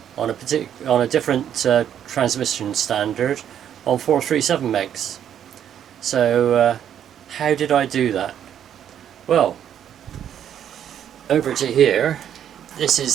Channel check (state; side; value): quieter; left; 9.6 dB